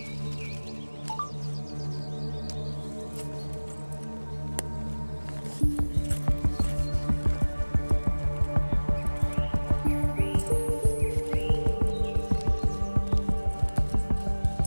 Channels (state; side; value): inverted; both; correlation -1.00